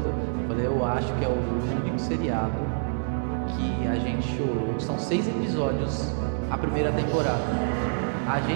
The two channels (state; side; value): silent; left; 57 dB below the other